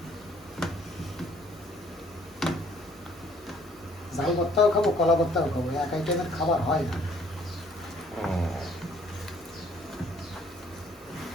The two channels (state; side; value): normal; both; correlation 0.61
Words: ঝাল ভর্তাও খাবো, কলা ভর্তাও খাবো, এক আইটেমের খাবার হয় না।